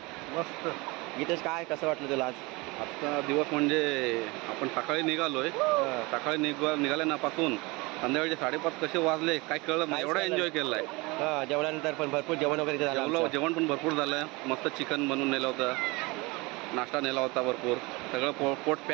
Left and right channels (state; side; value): quieter; left; 25.0 dB